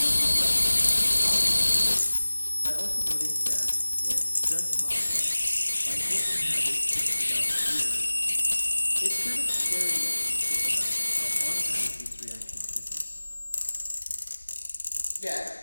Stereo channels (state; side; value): inverted; both; correlation -1.00